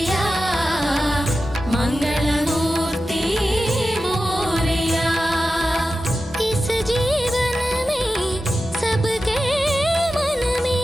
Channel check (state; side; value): normal; both; correlation 0.92